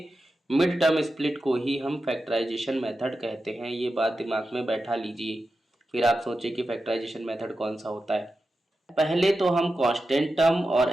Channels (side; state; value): both; normal; correlation 0.91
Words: मिड टर्म स्प्लिट को ही हम फैक्टराइजेशन मेथड कहते हैं, ये बात दिमाग में बैठा लीजिए, फिर आप सोचिए कि फैक्टराइजेशन मेथड कौन सा होता है। पहले तो हम कांस्टेंट टर्म और